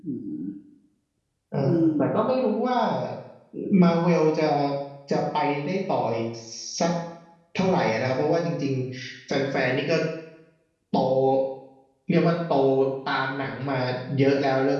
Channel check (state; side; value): identical; both; correlation 1.00